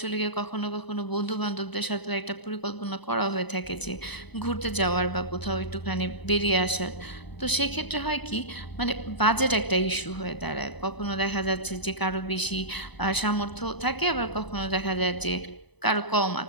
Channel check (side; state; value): right; late; 0.99 ms